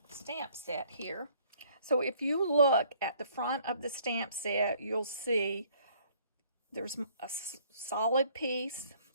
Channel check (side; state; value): both; inverted; correlation -0.61